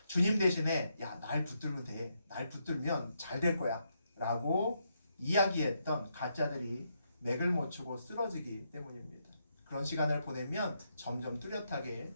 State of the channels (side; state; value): both; inverted; correlation -0.79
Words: 주님 대신에 야, 날 붙들면 돼. 날 붙들면 잘 될 거야. 라고 이야기했던 가짜들이 맥을 못 추고 쓰러지기 때문입니다. 그런 시간을 보내면 점점 뚜렷하게